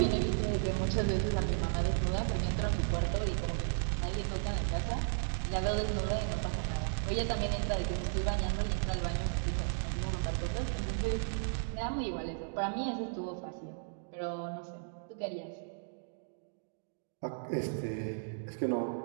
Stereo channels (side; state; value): left; silent; digital silence